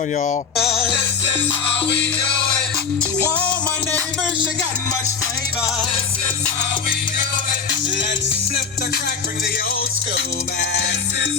y'all, this is how we do it. To all my neighbors, you got much flavor. This is how we do it. Let's flip the crack, bring the old school back. This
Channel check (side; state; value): right; quieter; 5.9 dB